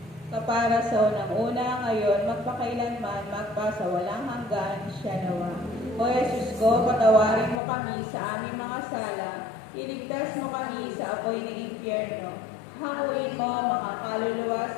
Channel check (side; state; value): right; drops out; at 7.6 s